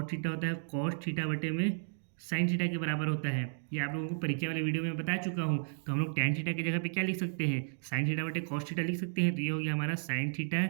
थीटा होता है कॉस थीटा बटे में साइन थीटा के बराबर होता है। ये आप लोगों को परीक्षा वाले वीडियो में बता चुका हूँ। तो हम लोग टेन थीटा की जगह पे क्या लिख सकते हैं, साइन थीटा बटे कॉस थीटा लिख सकते हैं। तो ये हो गया हमारा साइन थीटा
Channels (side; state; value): left; silent; digital silence